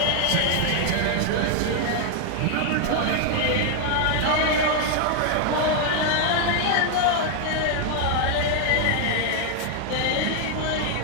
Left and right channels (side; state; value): both; different; correlation 0.01